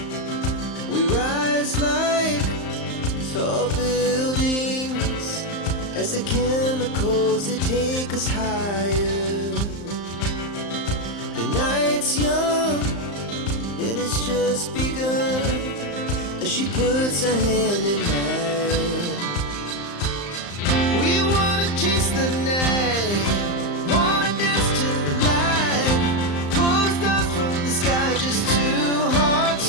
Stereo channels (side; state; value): right; late; 35 ms